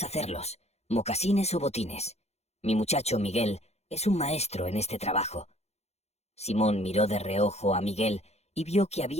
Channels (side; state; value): right; late; 0.31 ms